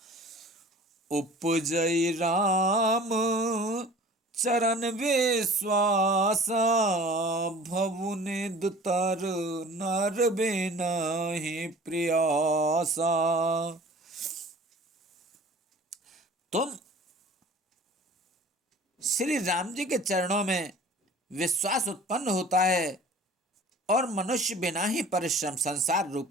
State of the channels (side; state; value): both; normal; correlation 0.45